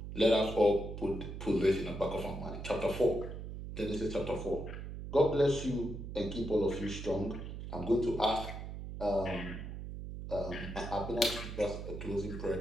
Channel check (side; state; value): right; noise; hum, 8 dB below the sound